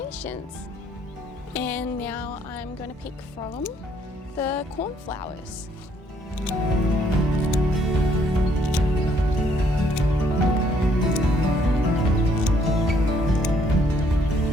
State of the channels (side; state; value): both; normal; correlation 0.67